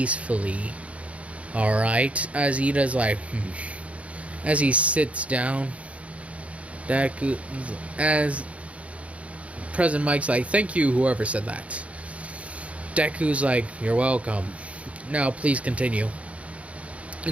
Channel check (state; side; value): late; left; 0.064 ms